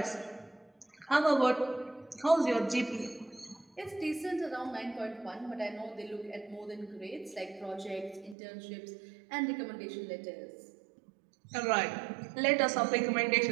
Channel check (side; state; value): left; drops out; at 8.3 s